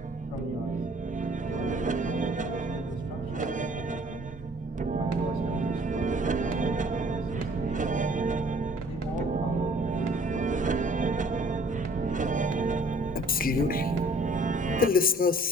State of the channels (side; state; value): both; normal; correlation 0.56